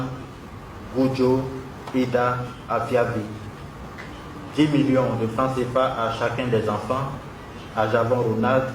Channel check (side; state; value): both; identical; correlation 1.00